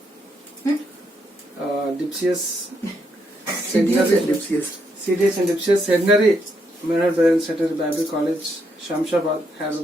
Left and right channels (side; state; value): both; normal; correlation 0.77